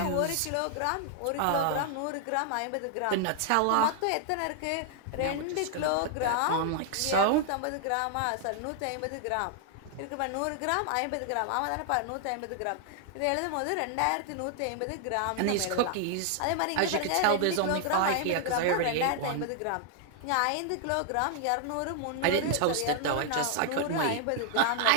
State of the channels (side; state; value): both; different; correlation 0.00